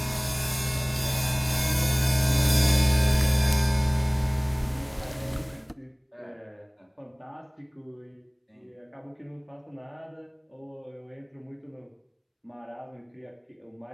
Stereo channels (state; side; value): identical; both; correlation 1.00